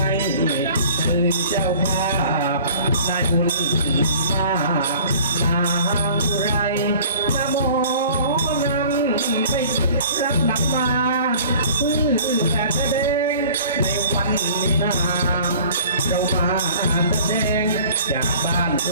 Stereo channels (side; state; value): both; inverted; correlation -0.48